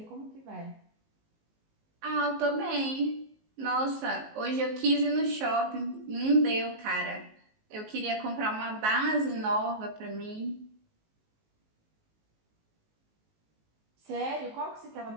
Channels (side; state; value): left; late; 19 ms